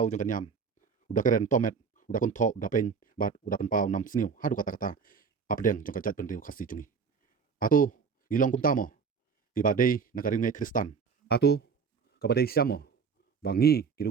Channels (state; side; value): quieter; left; 5.9 dB